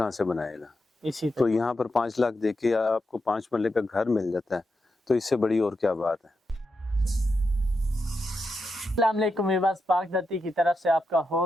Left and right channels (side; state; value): both; normal; correlation 0.86